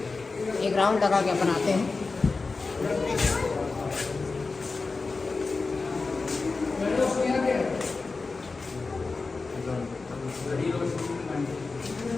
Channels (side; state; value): right; quieter; 4.0 dB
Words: एक राउंड लगा के बनाते हैं।